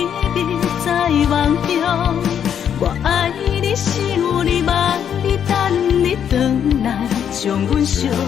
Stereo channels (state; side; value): quieter; right; 8.7 dB